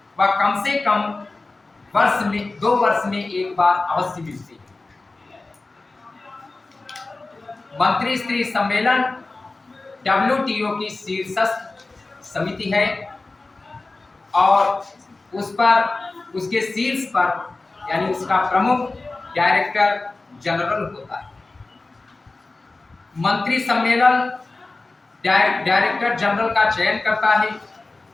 व कम से कम 2 वर्ष में एक बार अवश्य मिलते हैं। मंत्री स्तरीय सम्मेलन WTO की शीर्षस्थ समिति है और उस पर, उसके शीर्ष पर यानी उसका प्रमुख डायरेक्टर जनरल होता है। मंत्री सम्मेलन डायरेक्टर जनरल का चयन करता है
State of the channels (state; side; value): quieter; right; 3.4 dB